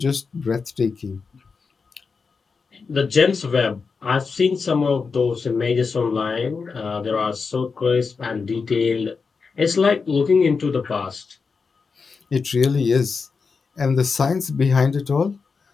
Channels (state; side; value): quieter; right; 5.0 dB